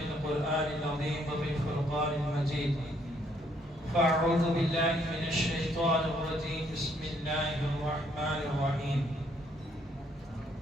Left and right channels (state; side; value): normal; both; correlation 0.68